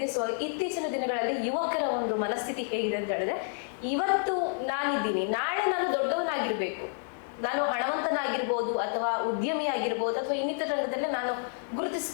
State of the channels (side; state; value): right; silent; digital silence